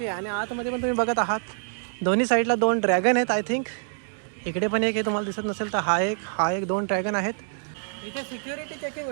आहे. आणि आतमध्ये पण तुम्ही बघत आहात दोन्ही साईडला 2 ड्रॅगन आहेत आय थिंक. इकडे पण एक आहे, तुम्हाला दिसत नसेल तर हा एक 2 ड्रॅगन आहेत. इथे सिक्युरिटी चेकिंग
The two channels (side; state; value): left; silent; digital silence